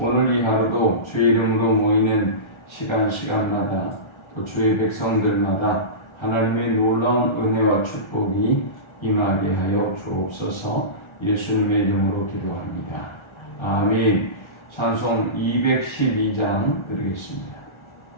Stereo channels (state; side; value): late; right; 1.4 ms